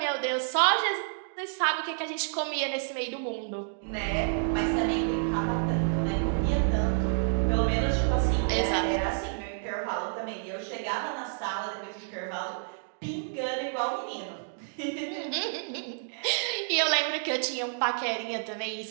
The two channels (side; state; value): left; silent; digital silence